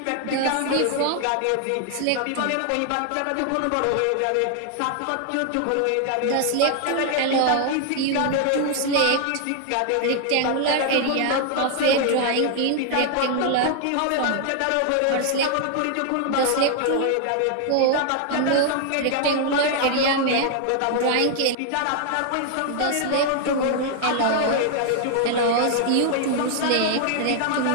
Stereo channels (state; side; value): different; both; correlation 0.00